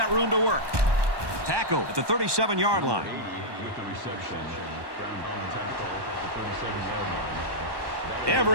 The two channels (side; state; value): left; late; 1.2 ms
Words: room to work. Tackle at the 37-yard line.